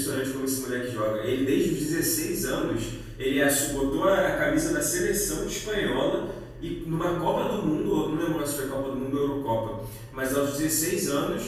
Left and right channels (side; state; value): both; identical; correlation 1.00